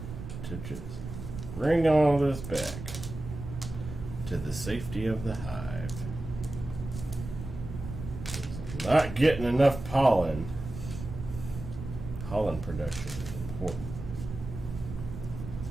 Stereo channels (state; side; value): noise; right; rumble, 9 dB below the sound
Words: to just bring all this back to the safety of the hive. 'Cause I'm not getting enough pollen. Pollen production is important.